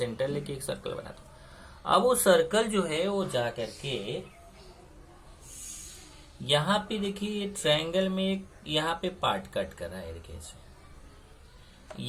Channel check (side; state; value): both; identical; correlation 1.00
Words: लेके एक सर्कल बना दो। अब वो सर्कल जो है वो जा करके यहाँ पे देखिए, ये ट्रायंगल में यहाँ पे पार्ट कट कर रहा है, देखिए इसे।